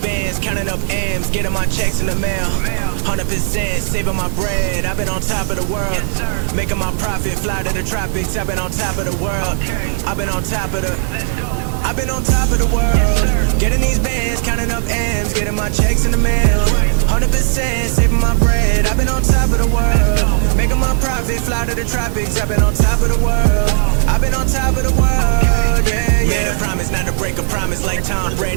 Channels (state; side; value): silent; left; 68 dB below the other